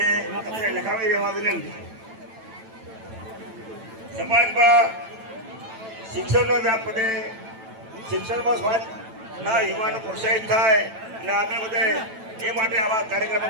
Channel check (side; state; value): left; late; 9.0 ms